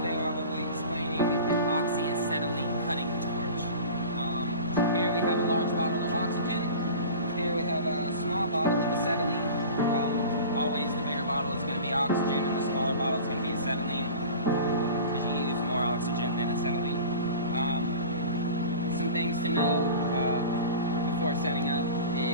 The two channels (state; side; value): inverted; both; correlation -0.37